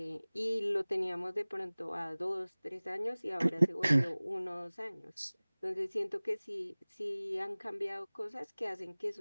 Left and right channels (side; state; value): both; inverted; correlation -0.99